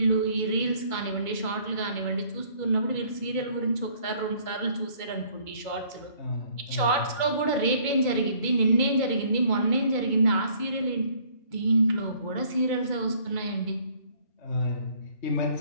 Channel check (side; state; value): right; late; 2.2 ms